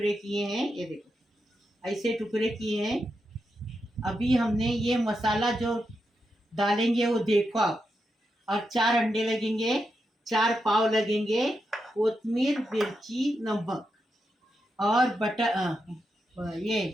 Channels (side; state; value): both; normal; correlation 0.86